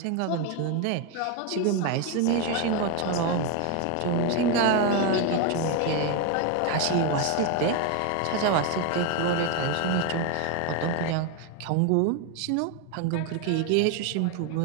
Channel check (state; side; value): different; both; correlation 0.02